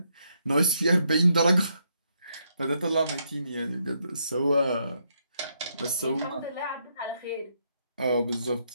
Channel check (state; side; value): inverted; both; correlation -0.77